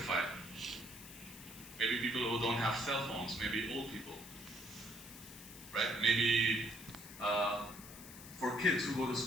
Maybe people who don't have cell phones, maybe old people, right? Maybe for kids who go to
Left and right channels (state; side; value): noise; left; hiss, 15 dB below the sound